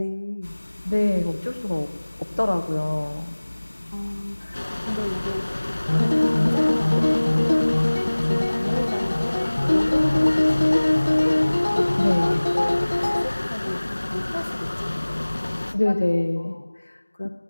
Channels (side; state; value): both; inverted; correlation -1.00